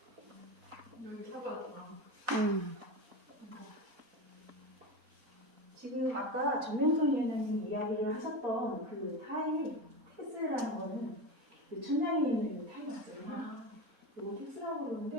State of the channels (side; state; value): both; normal; correlation 0.22